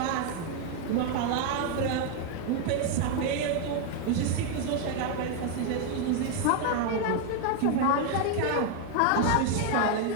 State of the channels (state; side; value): different; both; correlation 0.01